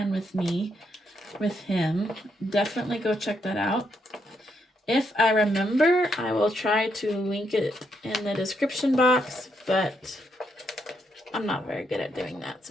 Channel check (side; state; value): both; normal; correlation 0.77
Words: with me, with him, definitely go check that out. If I remember, I will try to link it in the description box, but I'm not very good at doing that